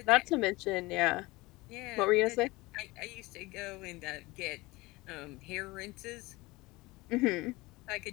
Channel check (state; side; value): quieter; right; 21.9 dB